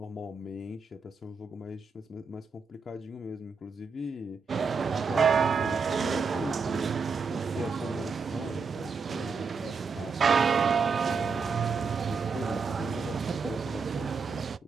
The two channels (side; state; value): left; quieter; 5.0 dB